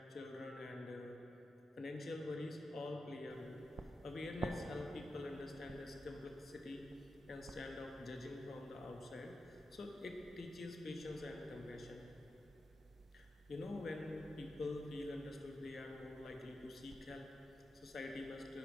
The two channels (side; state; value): both; normal; correlation 0.89